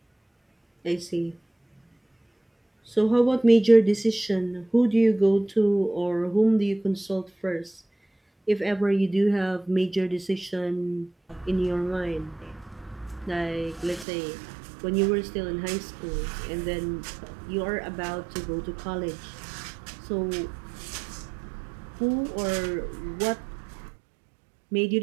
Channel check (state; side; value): drops out; left; at 14.1 s